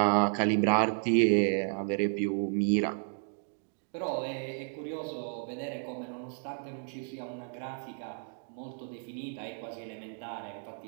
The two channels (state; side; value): silent; left; 56 dB below the other